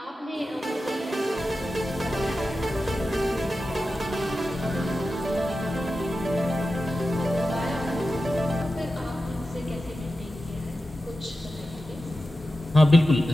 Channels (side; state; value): both; normal; correlation 0.92